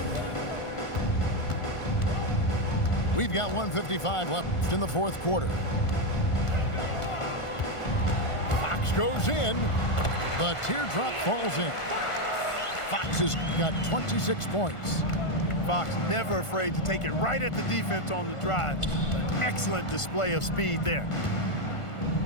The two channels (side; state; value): right; late; 1.5 ms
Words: We've got 1:55 left in the 4th quarter. Fox goes in. The teardrop falls in. Fox has got 26 points. Fox never afraid to take it right at the defense on the drive. An excellent display of speed there.